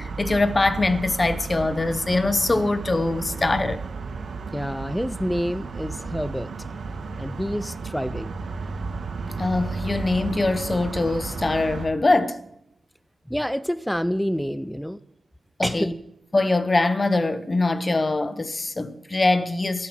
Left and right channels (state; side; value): normal; both; correlation 0.96